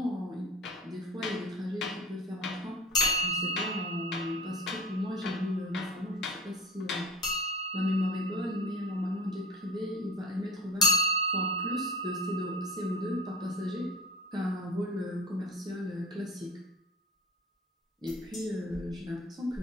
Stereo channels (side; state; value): both; normal; correlation 0.36